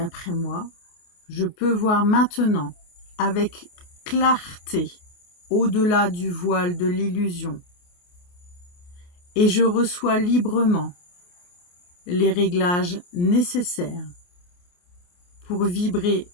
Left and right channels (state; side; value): late; right; 28 ms